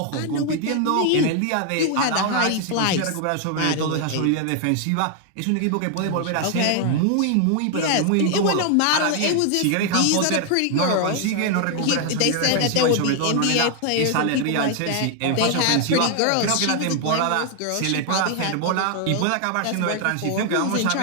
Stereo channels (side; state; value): both; different; correlation 0.00